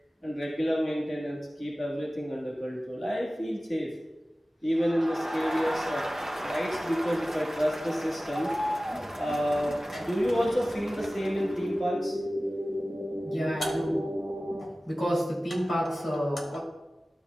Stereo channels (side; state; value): both; normal; correlation 0.96